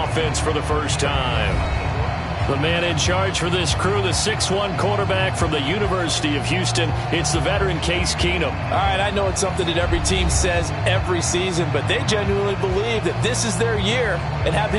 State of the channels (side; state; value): both; identical; correlation 1.00